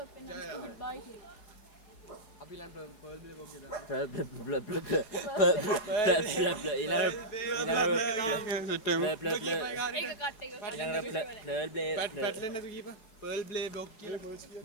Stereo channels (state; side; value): late; right; 4.7 ms